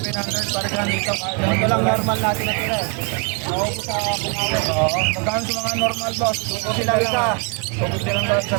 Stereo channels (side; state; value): left; quieter; 32.3 dB